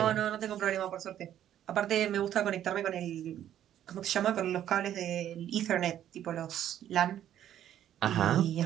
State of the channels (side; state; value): left; quieter; 11.1 dB